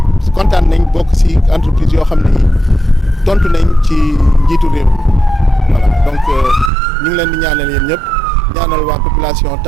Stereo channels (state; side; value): drops out; left; at 6.7 s